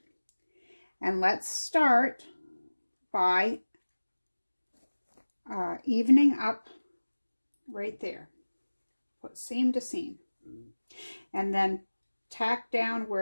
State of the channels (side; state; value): both; inverted; correlation -1.00